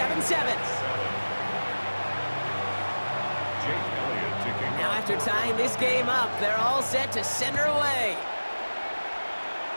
Now after tying this game up, they're all set to send her away.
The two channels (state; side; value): inverted; both; correlation -1.00